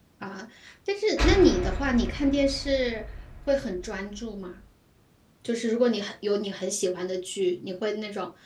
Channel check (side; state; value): both; identical; correlation 1.00